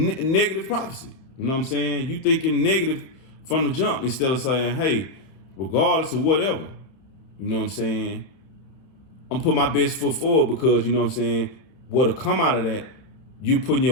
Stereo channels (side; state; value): right; late; 31 ms